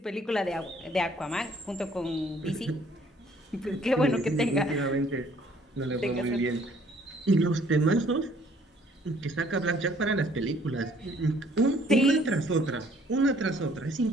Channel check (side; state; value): both; normal; correlation 0.60